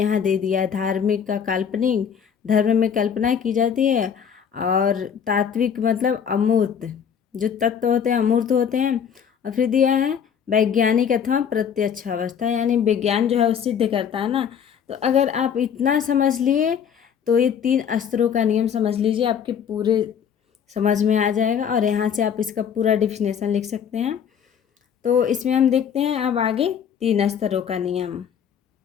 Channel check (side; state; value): right; quieter; 7.8 dB